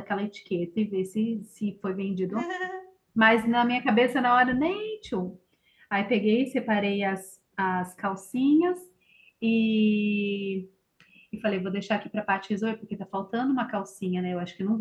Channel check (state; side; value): identical; both; correlation 1.00